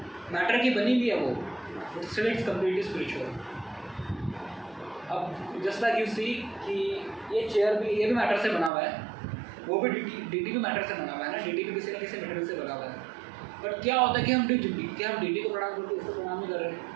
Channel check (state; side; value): drops out; left; at 8.7 s